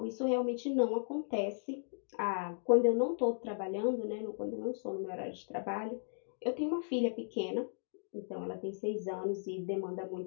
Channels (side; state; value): right; silent; digital silence